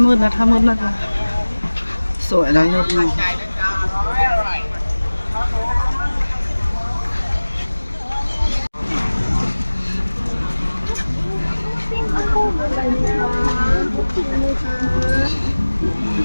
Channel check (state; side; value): inverted; both; correlation -1.00